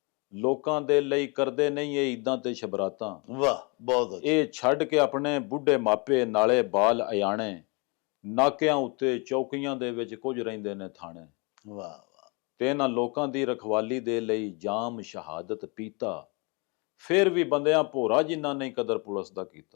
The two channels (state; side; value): quieter; right; 31.0 dB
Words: ਲੋਕਾਂ ਦੇ ਲਈ ਕਰਦੇ ਨਹੀਂ ਇਹ ਈਦਾਂ ਤੇ ਸ਼ਬਰਾਤਾਂ। ਵਾਹ, ਬਹੁਤ ਅੱਛਾ। ਇਹ ਛੱਡ ਕੇ ਆਪਣੇ ਬੁੱਢੇ ਮਾਪੇ ਨਾਲੇ ਬਾਲ ਅਯਾਣੇ। ਨਾਕਿਆਂ ਉੱਤੇ ਚੌਕੀਆਂ ਦੇ ਵਿੱਚ ਕੁਝ ਰਹਿੰਦੇ ਨੇ ਥਾਣੇ। ਵਾਹ ਵਾਹ। ਤੇ ਇਹਨਾਂ ਲੋਕਾਂ ਦੀ ਰਖਵਾਲੀ ਦੇ ਲਈ ਜਾਮ ਸ਼ਹਾਦਤ ਪੀਤਾ। ਫਿਰ ਵੀ ਬੰਦਿਆਂ ਭੋਰਾ ਜਿਨ੍ਹਾਂ ਨਹੀਂ ਕਦਰ ਪੁਲਿਸ ਦਾ